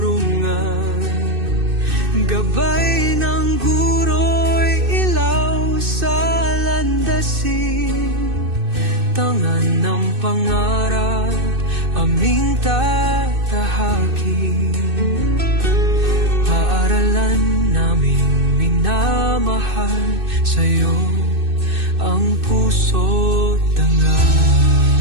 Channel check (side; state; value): left; late; 2.6 ms